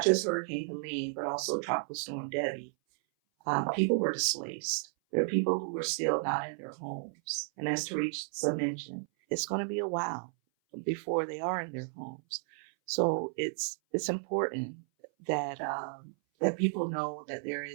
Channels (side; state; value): left; silent; 56 dB below the other